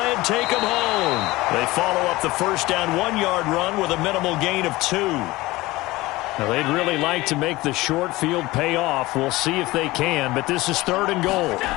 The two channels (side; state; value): right; quieter; 19.6 dB